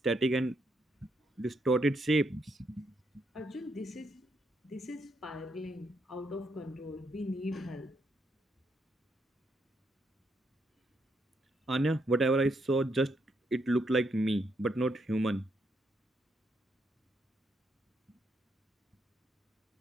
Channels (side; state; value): both; normal; correlation 0.77